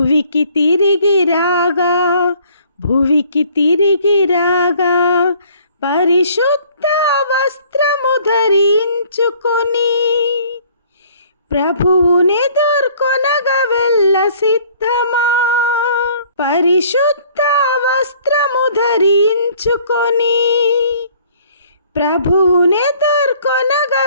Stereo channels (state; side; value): inverted; both; correlation -0.57